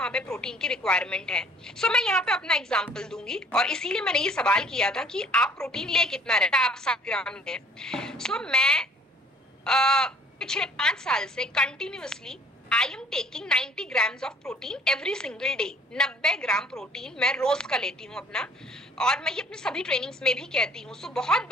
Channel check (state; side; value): normal; both; correlation 0.55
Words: पे प्रोटीन की रिक्वायरमेंट है। मैं यहाँ पे अपना एग्जाम्पल दूंगी और इसीलिए मैंने ये सवाल किया था कि आप प्रोटीन ले कितना रहता है, आप 7 ग्राम लें। मैं पिछले 5 साल से continuously I am taking 90 grams of protein every single day. 90 gram protein मैं रोज का लेती हूँ अपना, और मैं ये अपने सभी ट्रेनिंग्स में भी कहती हूँ। बहुत